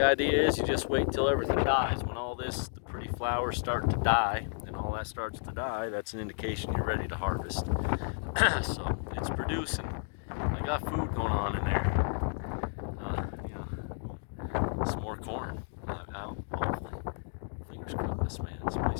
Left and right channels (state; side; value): silent; right; digital silence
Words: idea is you just wait till everything dies. When all the pretty flowers start to die, and all that starts to die, that's an indication you're ready to harvest. So it's producing. I got food going on in there. Some more corn out, hopefully. Fingers crossed, man. Some